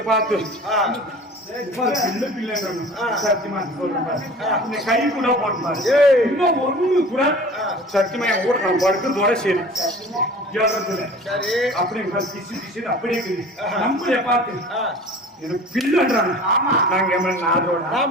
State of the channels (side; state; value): both; normal; correlation 0.42